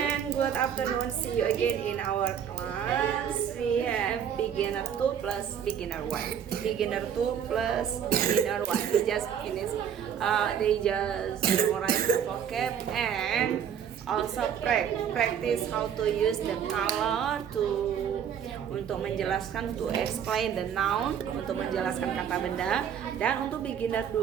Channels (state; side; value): quieter; left; 8.5 dB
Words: good afternoon. See you again in our class. We have beginner 2 plus beginner 1. Beginner 2 plus beginner 1. We just finished. They just memorize the vocab and also practice how to use the color untuk menjelaskan, to explain the noun, untuk menjelaskan kata benda. Dan untuk beginner